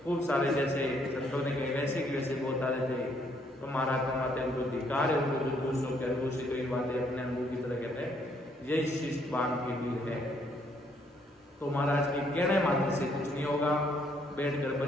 खूब सारे जैसे संतों ने कहे वैसे की वैसे बोलता रहते। तो महाराज फरमाते हैं उनको धिक्कार है, उनको जो दूसरों के अनुभव से कोई बातें अपने अनुभव की तरह कहते हैं, यही शिष्ट बांध के वीर है। तो महाराज के कहने मात्र से कुछ नहीं होगा। बैठकर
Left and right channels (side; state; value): both; normal; correlation 0.69